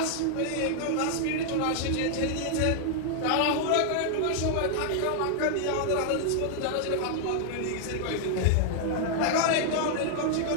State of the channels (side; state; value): both; different; correlation 0.00